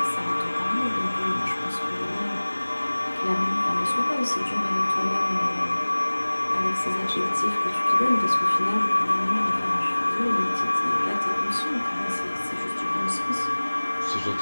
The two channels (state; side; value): inverted; both; correlation -1.00